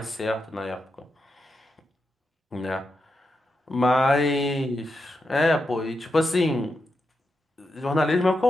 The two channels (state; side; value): normal; both; correlation 0.86